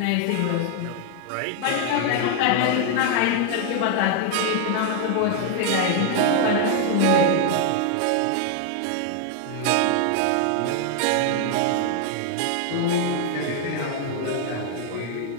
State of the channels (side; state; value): both; different; correlation 0.00